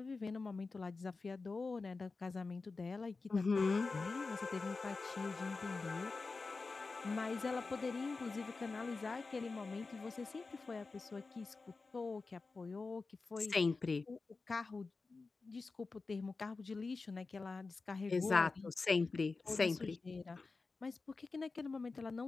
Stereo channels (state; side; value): quieter; right; 4.0 dB